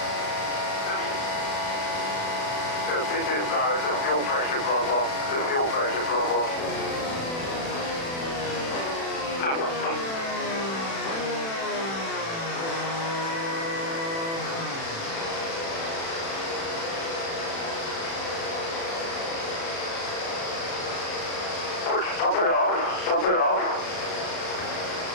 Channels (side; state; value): right; late; 36 ms